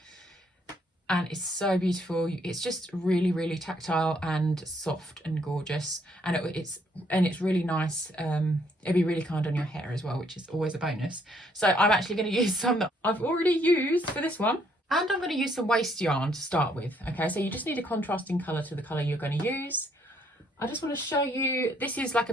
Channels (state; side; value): normal; both; correlation 0.68